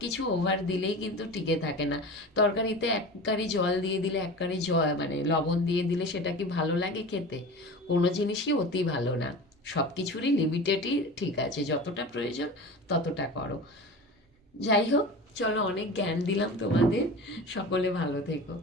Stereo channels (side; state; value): both; normal; correlation 0.33